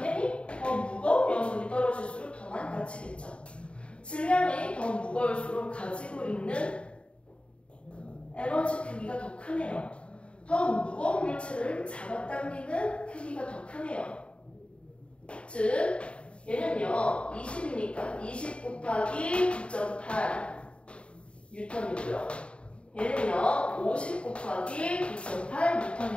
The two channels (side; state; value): right; late; 0.058 ms